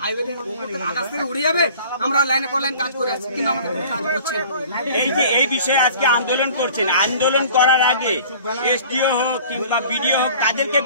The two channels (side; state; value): both; inverted; correlation -0.47